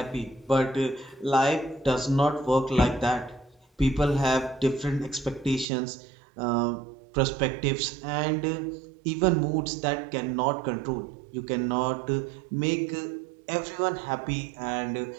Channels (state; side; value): drops out; left; at 5.7 s